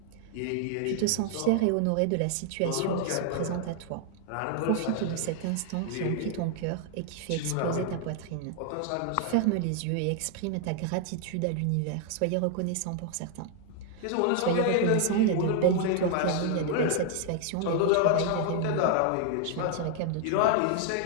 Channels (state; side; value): different; both; correlation 0.00